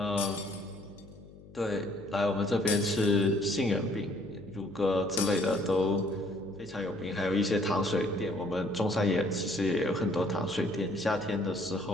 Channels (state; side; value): noise; left; hum, 20 dB below the sound